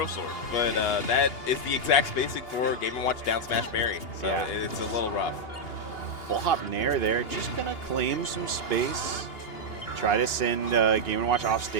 Sword. But that is the exact spacing for Game & Watch down smash Barry. So yeah. It's a little rough. Full hop Nair there. Just going to claim some space. Try to send Game & Watch off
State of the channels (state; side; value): late; right; 2.8 ms